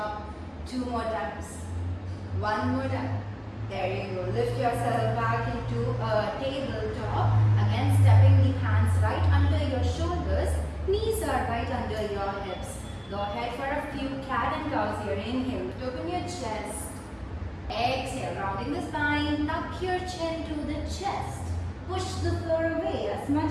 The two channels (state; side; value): identical; both; correlation 1.00